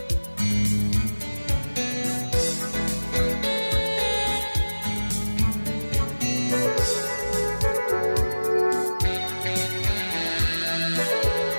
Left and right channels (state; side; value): inverted; both; correlation -1.00